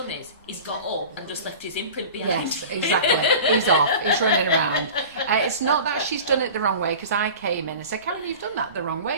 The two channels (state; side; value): inverted; both; correlation -0.37